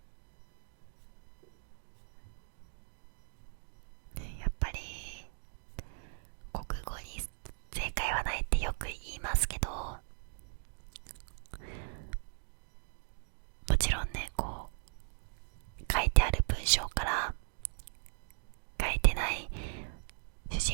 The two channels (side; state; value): left; silent; digital silence